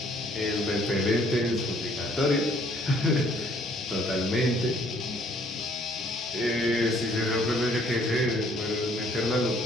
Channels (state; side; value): normal; both; correlation 0.62